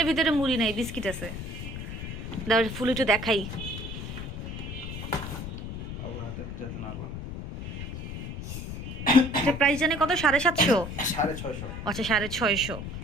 ভিতরে মুড়ি নাই, বিস্কিট আছে। দাও ফুল একটু দেখাই। প্রাইস জানি কত? 750। 650। আচ্ছা 650।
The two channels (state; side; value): noise; left; rumble, 7 dB below the sound